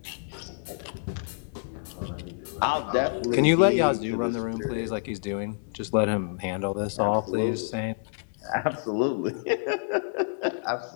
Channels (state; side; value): silent; right; digital silence